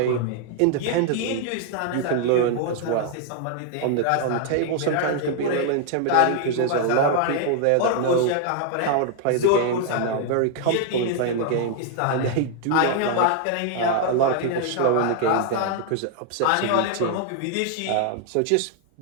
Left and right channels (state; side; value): different; both; correlation 0.00